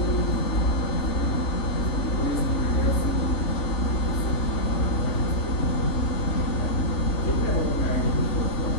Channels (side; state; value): right; late; 3.4 ms